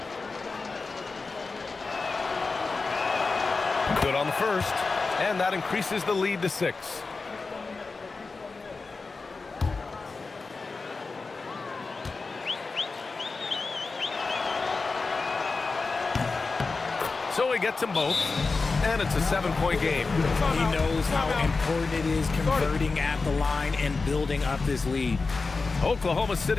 Good on the first, and that increases the lead to 6. So he gets them both, and it's a 7-point game. He knows how important it is converting at the line and building up this lead. Oklahoma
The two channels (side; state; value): right; quieter; 4.1 dB